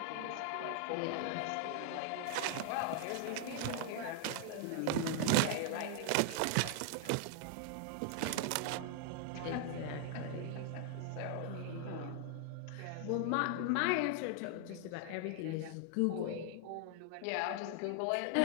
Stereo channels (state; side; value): different; both; correlation 0.00